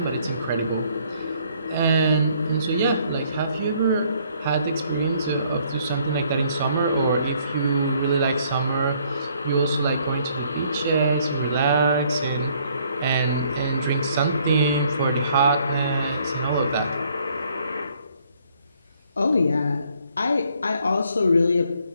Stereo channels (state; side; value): inverted; both; correlation -0.65